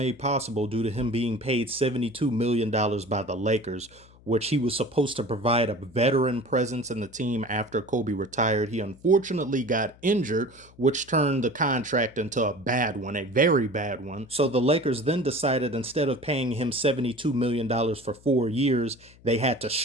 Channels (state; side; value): noise; left; hum, 25 dB below the sound